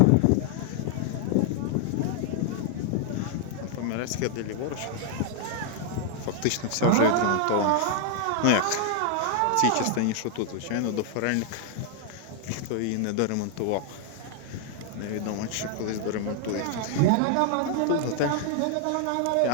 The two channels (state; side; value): different; both; correlation 0.00